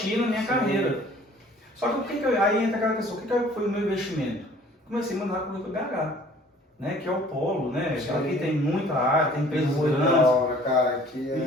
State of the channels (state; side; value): normal; both; correlation 0.53